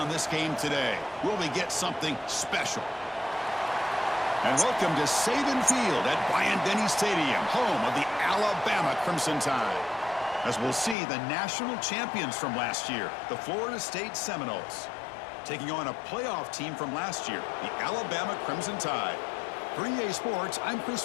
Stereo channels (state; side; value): drops out; right; at 11.0 s